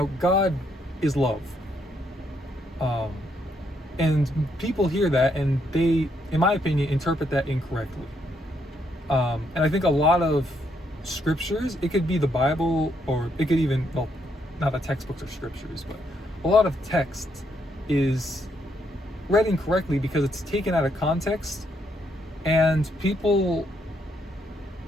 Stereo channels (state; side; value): normal; both; correlation 0.75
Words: God is love. Um, and people hear that and they, in my opinion, interpret that incorrectly. And I think a lot of scriptures, it could be the Bible, or it could even, well, not the textbooks or scriptures, but a lot of text is read incorrectly because it's taken out of context, and people